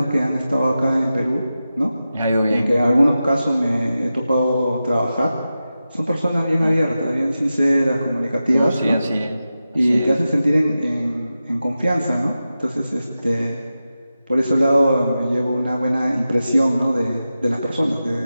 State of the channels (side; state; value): both; inverted; correlation -0.92